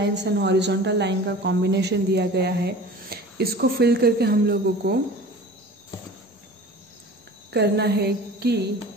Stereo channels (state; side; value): normal; both; correlation 0.40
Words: and horizontal line का कॉम्बिनेशन दिया गया है। इसको फिल करके हम लोगों को करना है कि